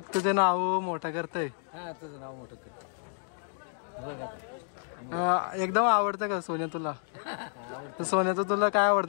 तुझे नाव मोठं करतय. एकदम आवडतं का सोन्या तुला? सोन्याचं तुला काय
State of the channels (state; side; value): silent; right; digital silence